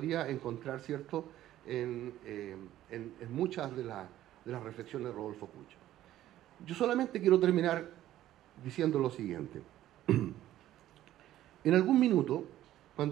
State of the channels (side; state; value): left; quieter; 13.4 dB